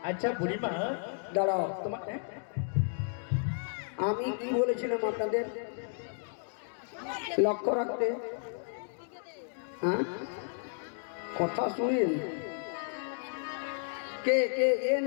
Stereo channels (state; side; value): silent; right; digital silence